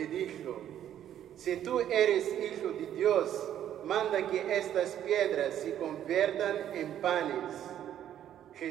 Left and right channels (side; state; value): left; quieter; 10.8 dB